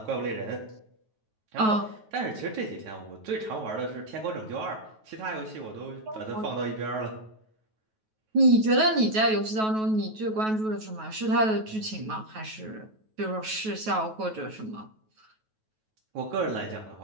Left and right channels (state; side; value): late; left; 9.3 ms